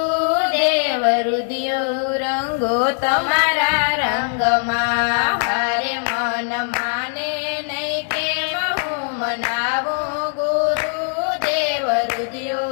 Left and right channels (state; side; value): silent; right; 63 dB below the other